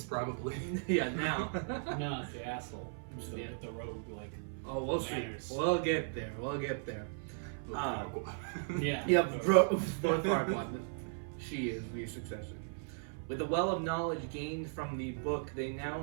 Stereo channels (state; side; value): silent; left; 53 dB below the other